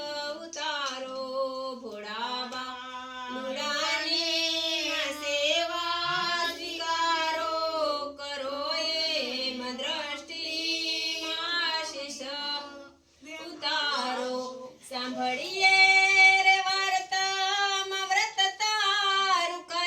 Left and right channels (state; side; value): identical; both; correlation 1.00